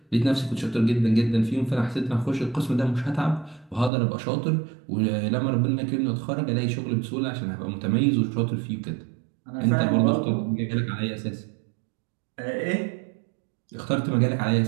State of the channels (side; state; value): left; drops out; at 3.9 s